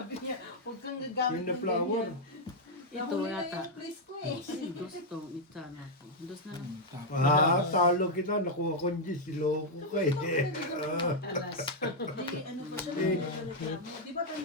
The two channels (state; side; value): normal; both; correlation -0.02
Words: niya, huwag kang gagamit Yung na ng flower. ganyan. Ito Nahuli na yata. yung please ko eh. Dos to, ita na ako. Dos na lang. Talo kita. Nakuha ko yung Diyos. Siloko ka eh. Di, ano pa siya, nagreklamo. Di ba